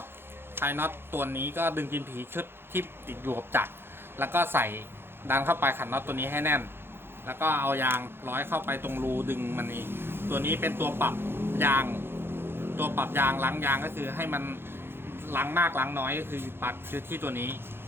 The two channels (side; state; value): left; late; 0.11 ms